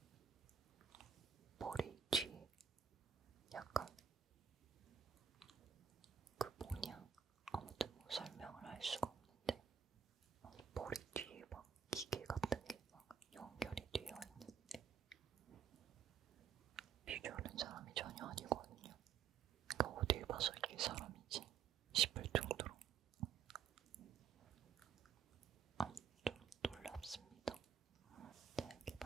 머리 뒤에 약간 그 뭐냐, 아무튼 뭐 설명을 할 수가 없는데, 머리 뒤에 막 기계 같은 게 막 연결이 되어 있는데, 비주얼은 사람이 전혀 아니거든요. 그러니까 어딜 봐서 이게 사람이지 싶을 정도로 좀 놀랍습니다. 자, 이렇게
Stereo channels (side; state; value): left; quieter; 7.4 dB